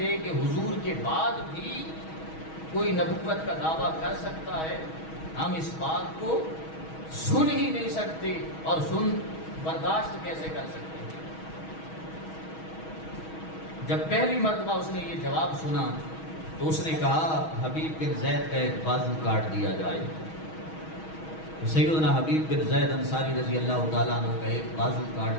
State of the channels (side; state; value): right; late; 6.3 ms